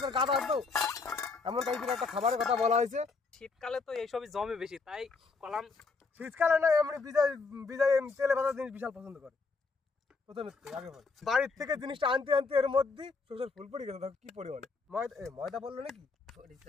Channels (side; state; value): right; quieter; 4.4 dB